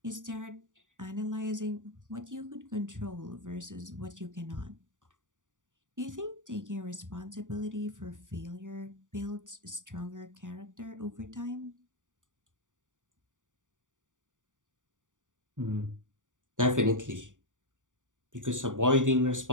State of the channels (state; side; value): late; left; 0.87 ms